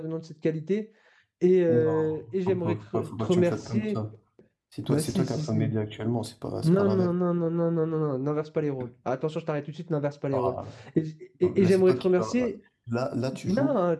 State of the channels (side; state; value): both; identical; correlation 1.00